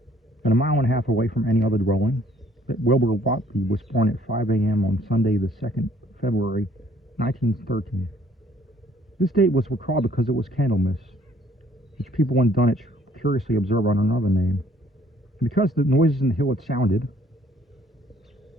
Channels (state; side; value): normal; both; correlation 0.61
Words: And a mile and a half away from any other dwelling, that Wilbur Whatley was born at 5 a.m. on Sunday, the 2nd February, 1913. This date was recalled because it was Candlemas, which people in Dunwich curiously observe under another name. And because the noises in the hill had sounded,